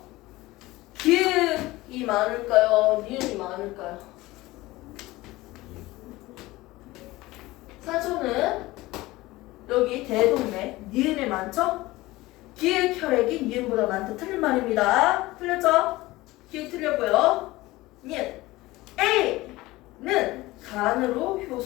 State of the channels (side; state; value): right; quieter; 19.2 dB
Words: 기읍이 많을까요? 니은이 많을까요? 산소는 여기 대동맥, 니은에 많죠? 기획 혈액이 니은보다 많다. 틀린 말입니다. 틀렸죠? 기획 틀렸고요. 니은. A는 간으로